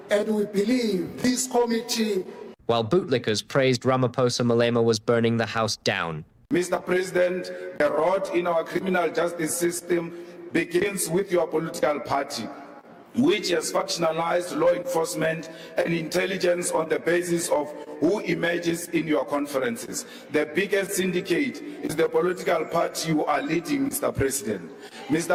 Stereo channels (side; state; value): both; identical; correlation 1.00